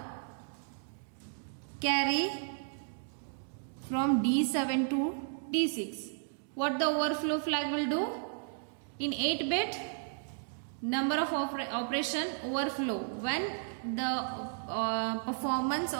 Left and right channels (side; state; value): left; silent; digital silence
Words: carry from D7 to D6, what the overflow flag will do? In 8-bit, number of operation overflow. When the performance